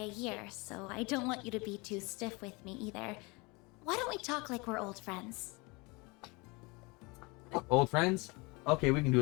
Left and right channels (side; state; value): right; quieter; 26.8 dB